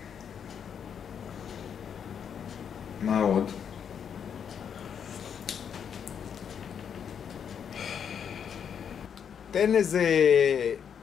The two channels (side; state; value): right; quieter; 7.7 dB